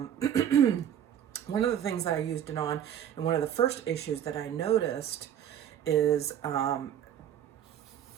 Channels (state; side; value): quieter; left; 9.8 dB